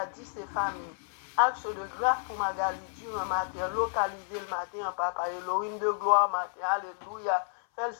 et famille. Action de grâce pour Magali Durand matin, localiser le matin, papa, Elohim de gloire matin, alléluia. Fais le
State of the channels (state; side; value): silent; right; 57 dB below the other